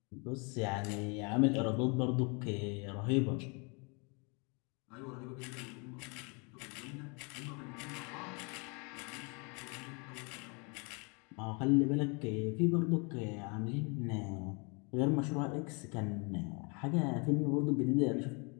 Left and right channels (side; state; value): right; quieter; 32.8 dB